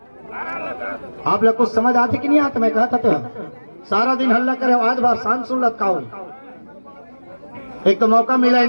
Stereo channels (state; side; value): inverted; both; correlation -1.00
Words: आप लोग कुछ समझ आती कि नहीं आती? मैं कहता तो सारा दिन हल्ला करे आज बार शांत सुन लत का। एक तो मौका मिला ही